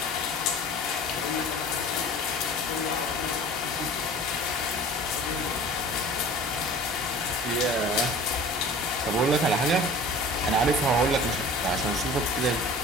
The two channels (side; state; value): both; normal; correlation 0.43